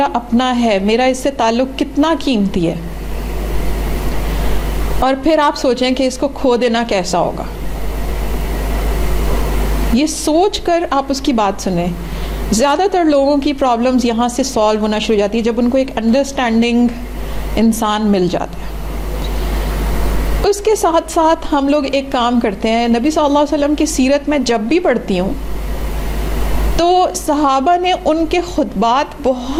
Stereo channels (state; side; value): identical; both; correlation 1.00